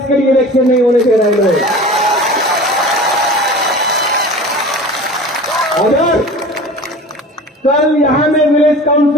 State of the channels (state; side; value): normal; both; correlation 0.38